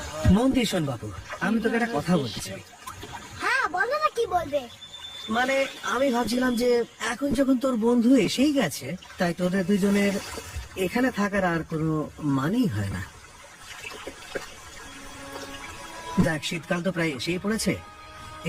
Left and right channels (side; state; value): both; identical; correlation 1.00